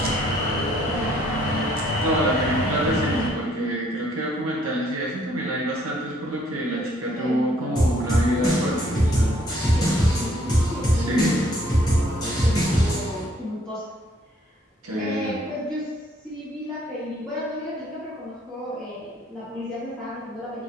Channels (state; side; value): normal; both; correlation 0.65